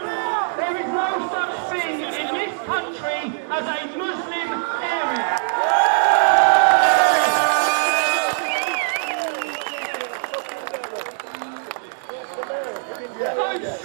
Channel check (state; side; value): silent; left; 65 dB below the other